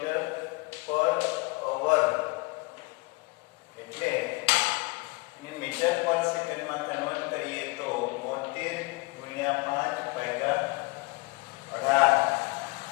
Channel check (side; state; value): right; quieter; 26.4 dB